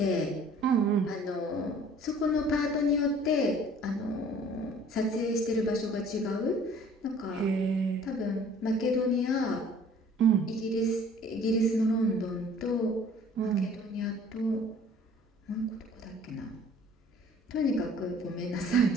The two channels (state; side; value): normal; both; correlation 0.52